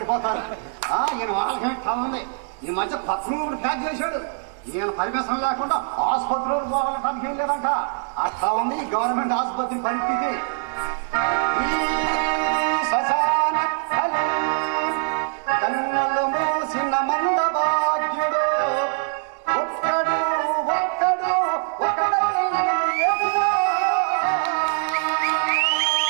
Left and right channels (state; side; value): silent; left; 63 dB below the other